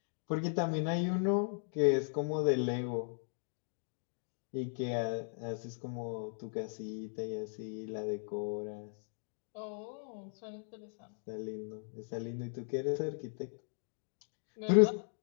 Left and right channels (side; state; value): right; silent; digital silence